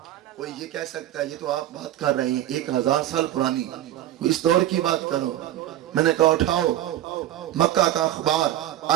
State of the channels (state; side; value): quieter; left; 12.9 dB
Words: کوئی یہ کہہ سکتا ہے یہ تو آپ بات کر رہے ہیں 1000 سال پرانی، اس دور کی بات کرو۔ میں نے کہا اٹھاؤ مکہ کا اخبار